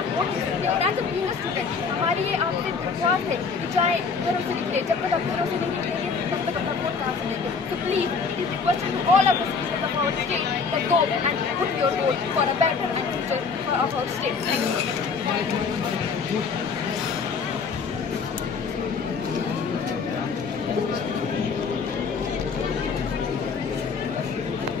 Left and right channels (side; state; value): right; quieter; 5.2 dB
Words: वोट दे सकते हैं। और as a being a student हमारी ये आपसे विश्वास है कि चाहे घरों से निकले, जब तक आप घरों से नहीं निकलेंगे तब तक अपना वोट कहाँ से देंगे। So please it is requested to all of the citizens of our state that go and put your vote for a better and future of our state. Thank you.